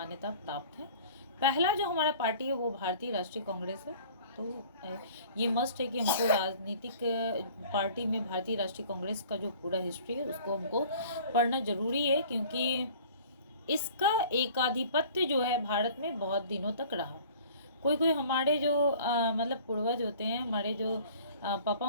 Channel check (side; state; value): both; inverted; correlation -0.48